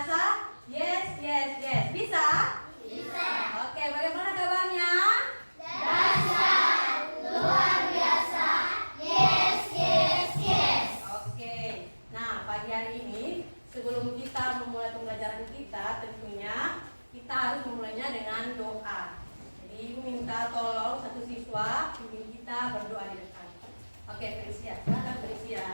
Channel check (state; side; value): inverted; both; correlation -1.00